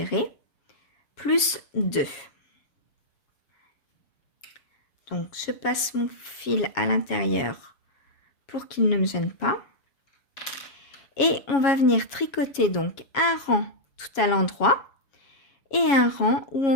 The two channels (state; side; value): late; right; 7.2 ms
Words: plus 2. Donc, je passe mon fil à l'intérieur pour qu'il ne me gêne pas. Et on va venir tricoter donc un rang tout à l'endroit et un rang où